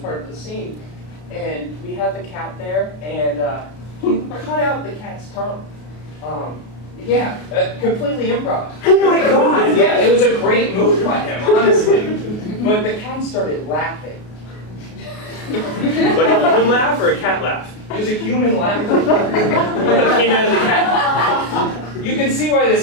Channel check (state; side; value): late; right; 33 ms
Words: part of the scene. And we had the cat there, and he cut out the cat's tongue. Completely improv. Oh my god! Yeah, it was a great move by him, honestly. But the cat started laughing. Like a human laugh or a cat laugh? It was a human laugh. What that came out of the cat? You can see why